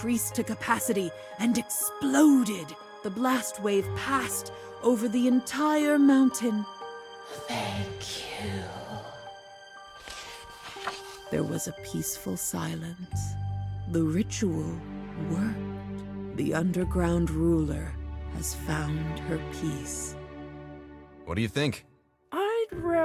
to capacity and exploded. The blast wave passed over the entire mountain. Thank you. There was a peaceful silence. The ritual worked. The underground ruler has found her peace. What do you think? I'd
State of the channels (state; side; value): identical; both; correlation 1.00